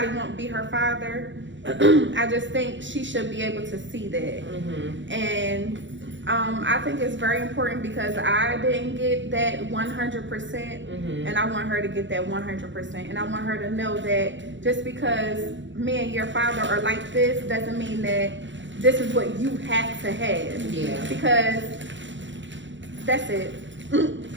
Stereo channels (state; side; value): late; left; 0.54 ms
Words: won't be her father, I just think she should be able to see that. And I think it's very important because I didn't get that 100%, and I want her to get that 100%. And I want her to know that just because me and your father are like this doesn't mean that this is what you have to have. Yeah. Because that's it.